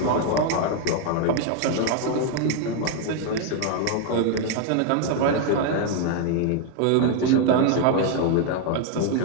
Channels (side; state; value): both; different; correlation 0.01